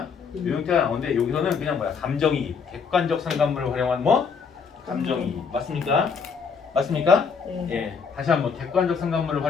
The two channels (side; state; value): right; quieter; 5.8 dB